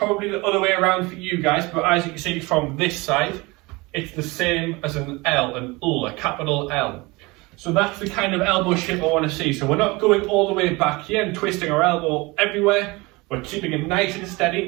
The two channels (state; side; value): quieter; left; 23.9 dB